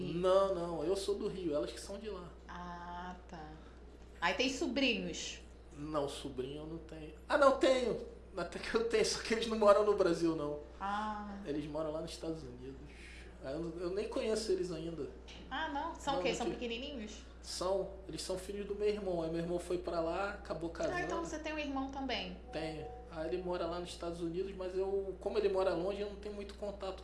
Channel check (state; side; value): identical; both; correlation 1.00